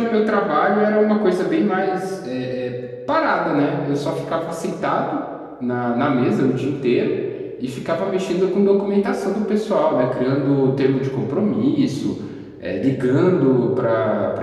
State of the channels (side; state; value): both; identical; correlation 1.00